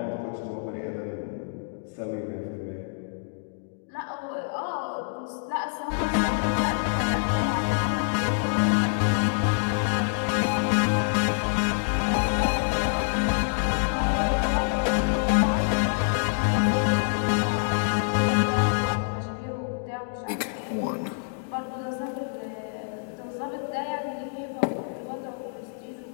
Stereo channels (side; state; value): right; silent; digital silence